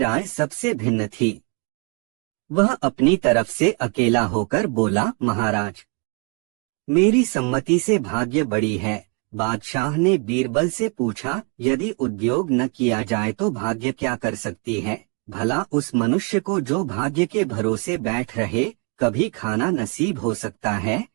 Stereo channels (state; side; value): quieter; left; 34.0 dB